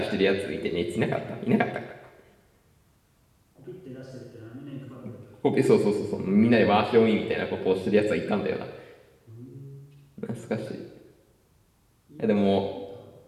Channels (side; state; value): both; identical; correlation 1.00